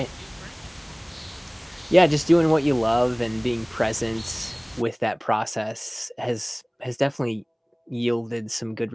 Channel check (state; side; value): identical; both; correlation 1.00